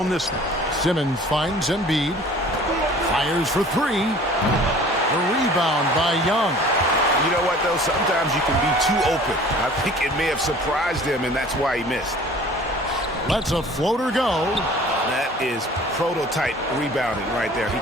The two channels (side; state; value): both; normal; correlation 0.47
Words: this one. Simmons finds Embiid. Fires for 3. The rebound by Young. You know what, though? Sometimes you can be too open. I think it may have surprised him, and that's why he missed. Lets a floater go. That is prototype rebounding right there. He